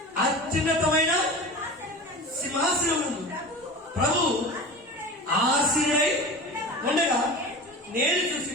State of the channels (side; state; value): both; normal; correlation 0.33